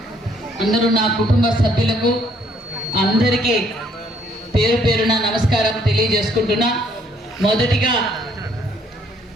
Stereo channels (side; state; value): both; normal; correlation 0.66